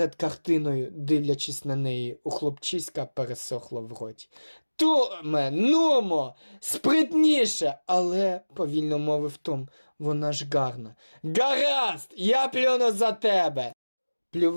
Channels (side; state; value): both; inverted; correlation -1.00